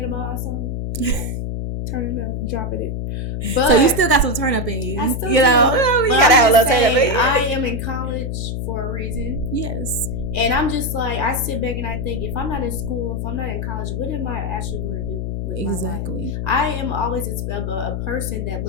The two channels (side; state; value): left; noise; hum, 3 dB below the sound